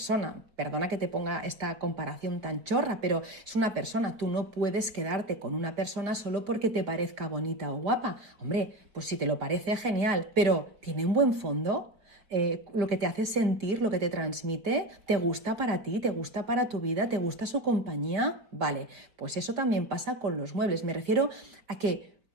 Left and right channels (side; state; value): left; late; 4.7 ms